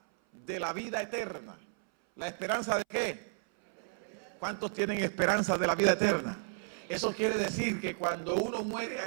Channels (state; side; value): silent; left; 56 dB below the other